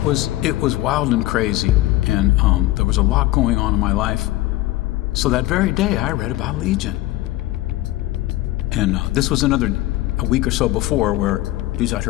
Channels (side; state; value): right; quieter; 17.0 dB